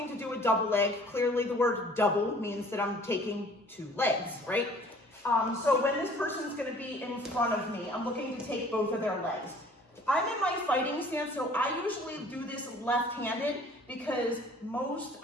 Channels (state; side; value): normal; both; correlation 0.52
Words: to do a double leg, clearly the word double means that I'm taking two legs, right? So when this person is going to be in front of me, I'm looking to take both of their legs. I'm in my fighting stance, so I usually do this left-handed because most